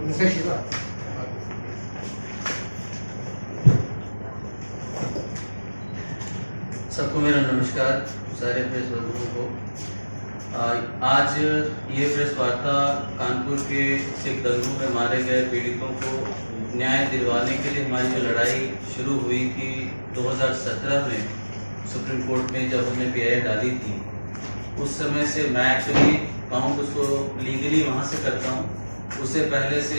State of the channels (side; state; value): both; inverted; correlation -1.00